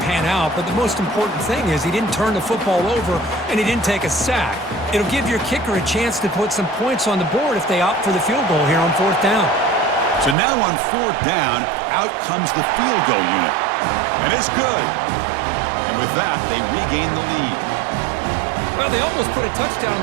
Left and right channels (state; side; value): drops out; left; at 10.4 s